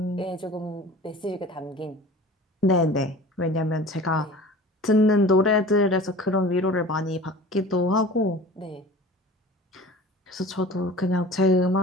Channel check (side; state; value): both; normal; correlation 0.41